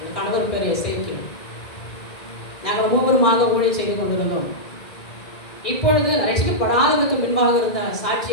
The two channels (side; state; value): right; late; 1.9 ms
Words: கணவர் பேர் எஸ்ஐக்கு. நாங்கள் ஒவ்வொருமாக ஊழியம் செய்து கொண்டிருந்தோம். இப்பொழுது ரசிக்கப்படாததுக்கு முன்பாக இருந்த